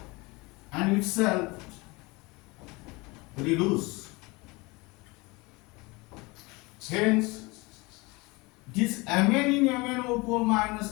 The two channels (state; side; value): quieter; right; 24.8 dB